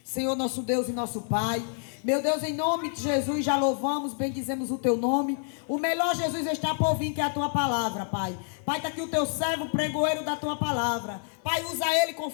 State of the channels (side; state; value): right; silent; 56 dB below the other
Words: Senhor, nosso Deus e nosso Pai, meu Deus, em nome de Jesus, já louvamos, bendizemos o teu nome. O melhor, Jesus, está por vir, que é a tua palavra, Pai. Pai, está aqui o teu servo, pregoeiro da tua palavra. Pai, usa ele